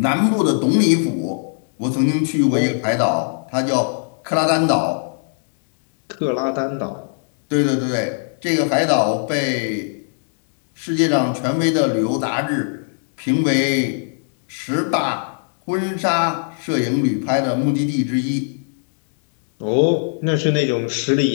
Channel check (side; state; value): right; silent; digital silence